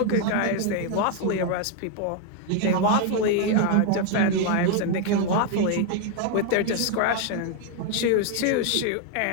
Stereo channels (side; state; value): both; different; correlation 0.01